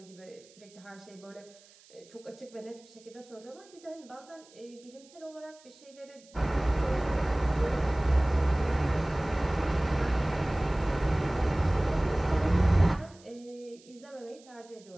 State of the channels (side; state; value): right; noise; hiss, 26 dB below the sound